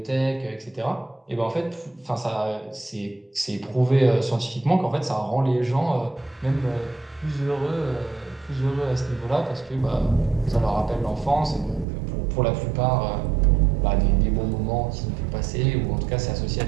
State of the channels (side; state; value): left; drops out; at 11.9 s